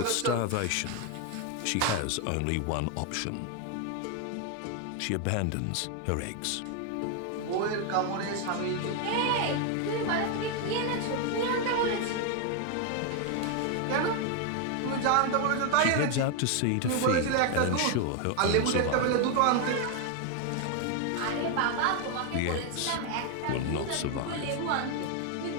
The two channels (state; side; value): different; both; correlation 0.01